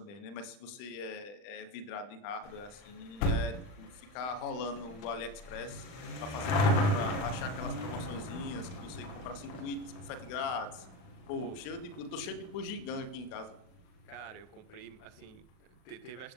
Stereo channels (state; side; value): late; right; 39 ms